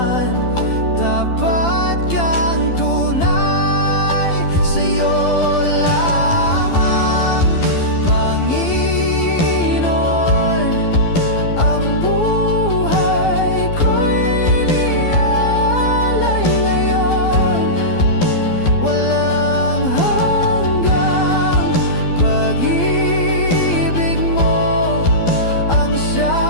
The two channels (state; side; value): late; right; 12 ms